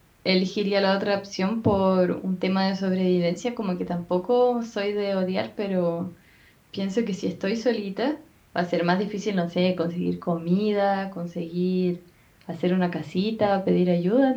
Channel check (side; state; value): both; identical; correlation 1.00